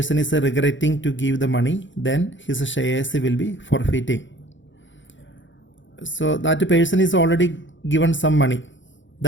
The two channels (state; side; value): late; right; 0.55 ms